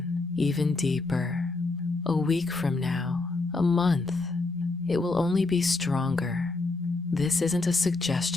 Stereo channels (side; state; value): right; quieter; 3.5 dB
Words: even deeper. A week from now, a month, it will only be stronger. This isn't a